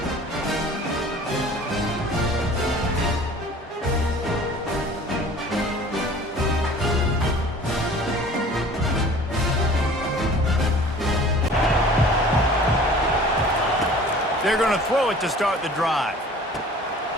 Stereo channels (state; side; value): normal; both; correlation 0.46